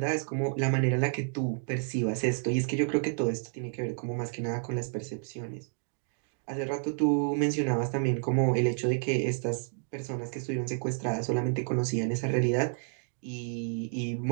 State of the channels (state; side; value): silent; left; 58 dB below the other